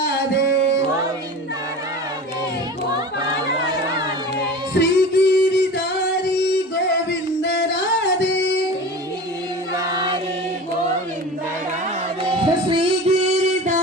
श्रीगिरिधारी गोविंद राधे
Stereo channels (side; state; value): both; normal; correlation 0.34